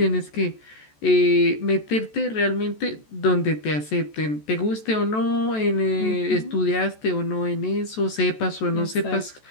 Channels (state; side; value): late; right; 14 ms